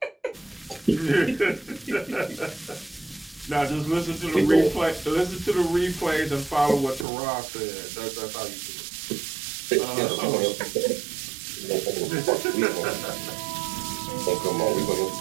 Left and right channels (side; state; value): left; drops out; at 7.1 s